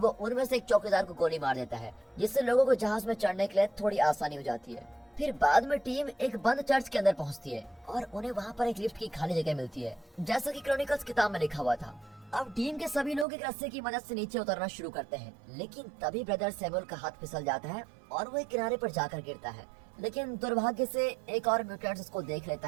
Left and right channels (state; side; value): drops out; left; at 13.2 s